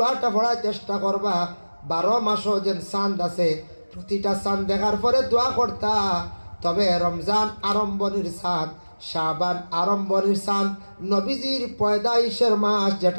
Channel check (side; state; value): both; inverted; correlation -1.00